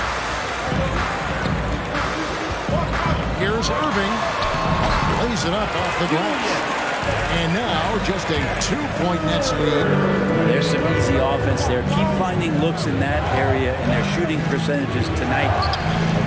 Here's Irving. Lays it up off the glass. And now just a 2-point Nets lead. There's some easy offense there. Keep finding looks in that area, and their shooting percentages tonight are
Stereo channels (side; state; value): both; identical; correlation 1.00